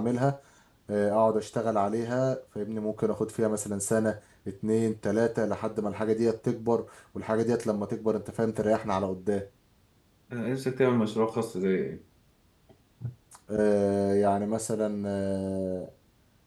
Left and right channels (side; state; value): both; identical; correlation 1.00